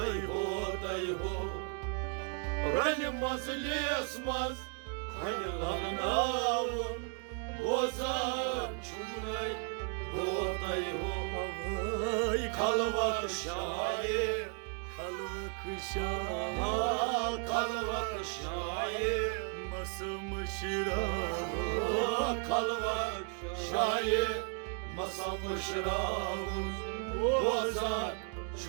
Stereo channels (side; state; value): left; quieter; 39.3 dB